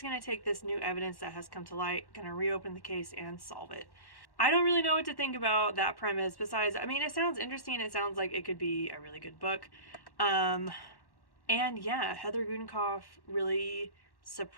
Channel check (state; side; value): late; right; 1.1 ms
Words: going to take this new evidence that has come to light, going to reopen the case and solve it. I don't really know what to think about that premise besides, I mean, it sounds interesting. It sounds like it could be a really good book. And yeah, Heather Gudenkauf really